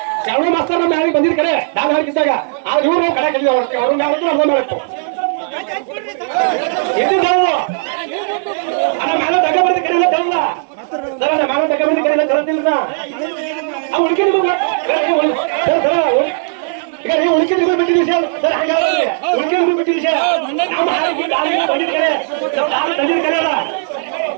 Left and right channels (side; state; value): left; silent; 69 dB below the other